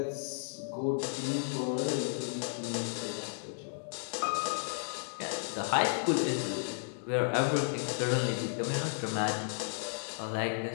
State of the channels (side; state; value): right; silent; digital silence